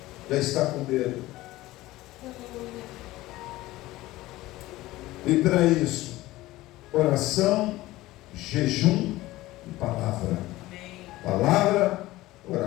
Já está com medo. E para isso, oração, jejum e palavra. Palavra,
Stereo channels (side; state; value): right; quieter; 17.6 dB